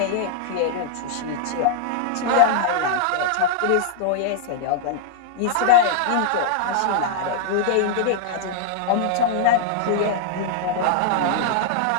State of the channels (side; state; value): both; different; correlation -0.01